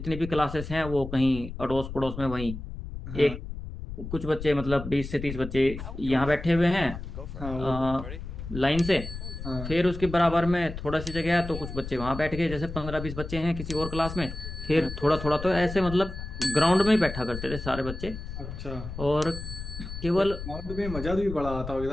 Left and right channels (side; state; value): left; noise; rumble, 9 dB below the sound